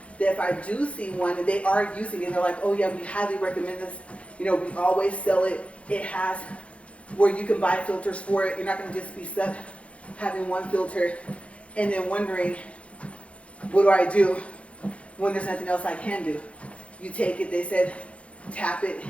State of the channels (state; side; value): late; right; 0.062 ms